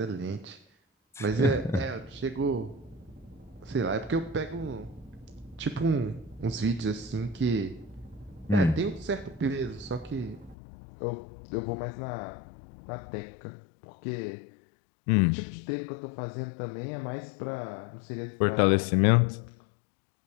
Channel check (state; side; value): drops out; right; at 10.6 s